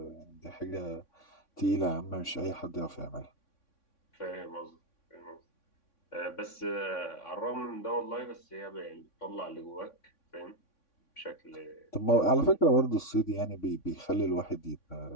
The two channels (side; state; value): right; late; 3.6 ms